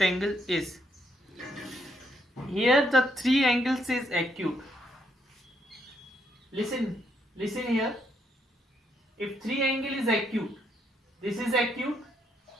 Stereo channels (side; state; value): both; normal; correlation 0.75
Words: angle is. Here the three angles is acute. Listen here. If three angle is acute, this is acute,